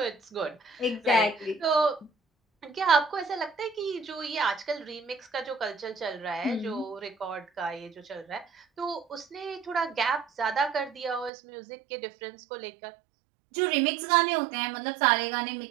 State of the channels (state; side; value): drops out; left; at 11.3 s